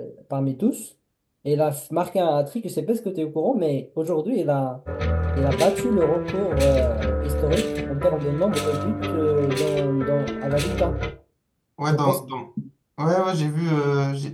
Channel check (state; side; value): identical; both; correlation 1.00